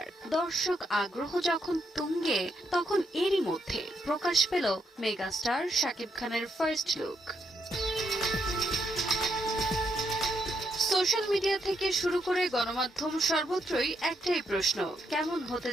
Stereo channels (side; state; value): both; normal; correlation 0.78